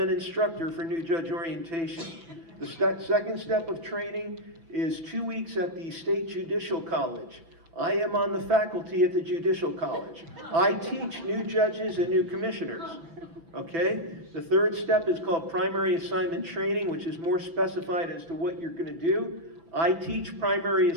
instructor for new judge orientation. The second step of training is 2 weeks at the State Judicial College. I am on the faculty at the Judicial College. I teach new judges and new commissioners. Okay? The third step is called primary assignment training, which is more specified as to what you're going to do. I teach primary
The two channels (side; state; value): left; late; 6.0 ms